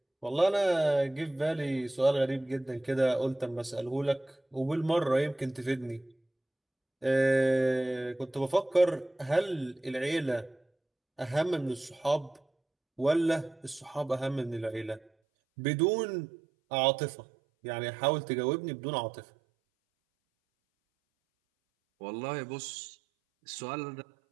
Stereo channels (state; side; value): drops out; left; at 15.1 s